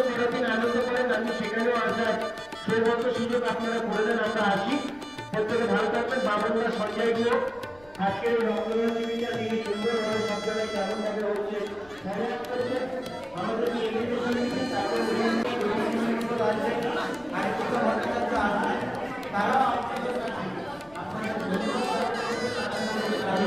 করার দিন আনন্দ করেন। আমি সেখানেও আসার সৌভাগ্য সুযোগ আপনারা করে দেন, আমরা আসি। প্রত্যেকে ভালো থাকবেন। বাবনদা সঞ্জয় গুহ আজকের এই রক্তদান শিবিরটা তিনি সুন্দরভাবে সব জায়গায় কেমনভাবে হচ্ছে ধন্যবাদ করছেন। আমাদেরকে এগিয়ে দিচ্ছেন, তারপর তারা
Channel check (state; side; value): noise; left; rumble, 27 dB below the sound